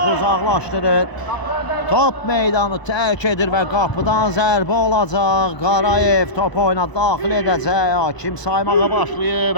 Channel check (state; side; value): late; right; 1.0 ms